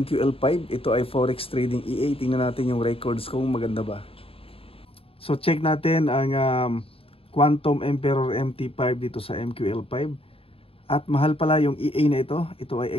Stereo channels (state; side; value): late; right; 0.27 ms